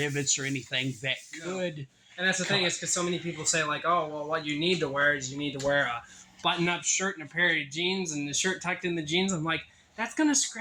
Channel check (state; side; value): identical; both; correlation 1.00